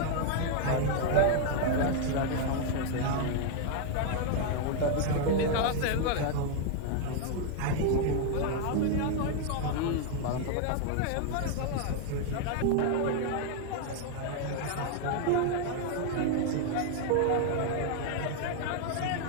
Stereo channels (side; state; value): both; different; correlation 0.00